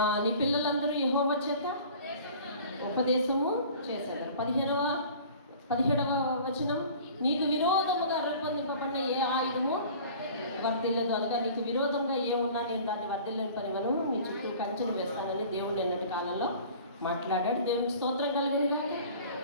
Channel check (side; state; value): both; inverted; correlation -0.45